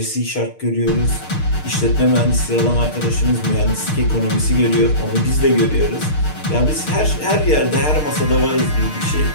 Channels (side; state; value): right; late; 6.6 ms